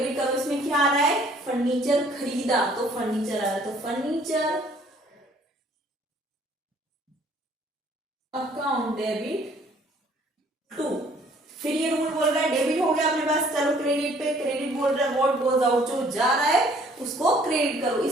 करो। इसमें क्या आ रहा है? फर्नीचर खरीदा, तो फर्नीचर आ रहा है, तो फर्नीचर अकाउंट डेबिट टू। फिर ये रूल बोल रहा है डेबिट हो गया अपने पास, चलो क्रेडिट पे, क्रेडिट बोल रहा है व्हाट गोज आउट, जो जा रहा है उसको क्रेडिट करो।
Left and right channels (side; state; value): both; normal; correlation 0.59